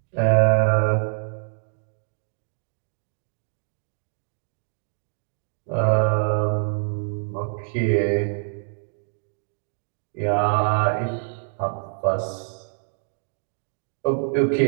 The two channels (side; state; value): left; silent; digital silence